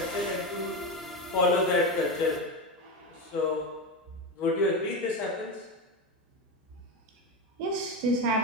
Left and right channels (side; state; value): both; normal; correlation 0.17